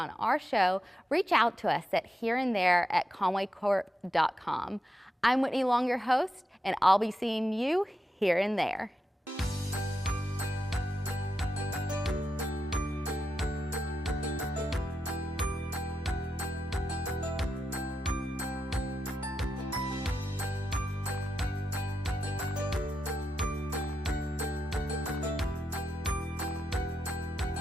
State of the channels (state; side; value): normal; both; correlation 0.87